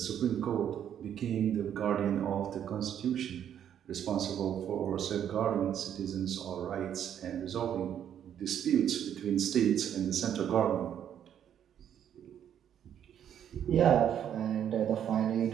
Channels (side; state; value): left; quieter; 9.6 dB